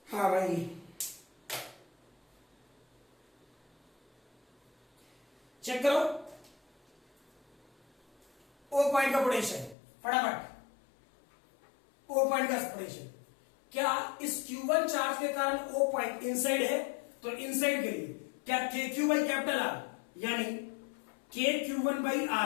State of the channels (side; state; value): right; drops out; at 9.8 s